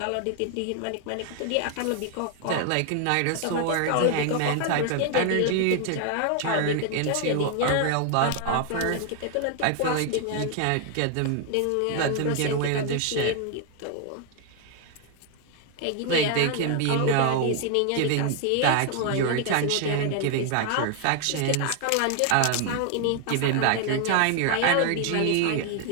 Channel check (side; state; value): both; different; correlation 0.00